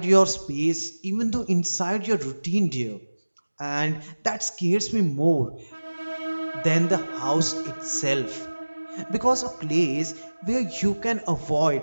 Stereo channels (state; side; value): inverted; both; correlation -1.00